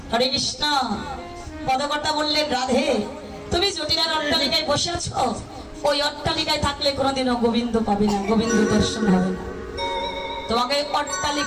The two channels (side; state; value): both; identical; correlation 1.00